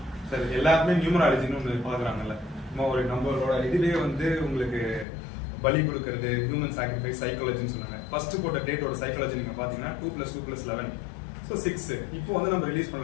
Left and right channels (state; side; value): drops out; right; at 5.1 s